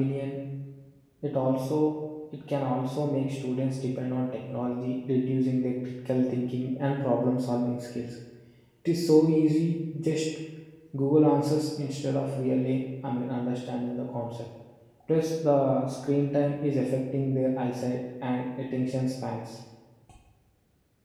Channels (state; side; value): identical; both; correlation 1.00